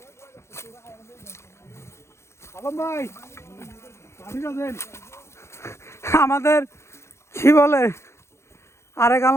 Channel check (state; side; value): late; right; 0.13 ms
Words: আমাদের কি বলে আরেক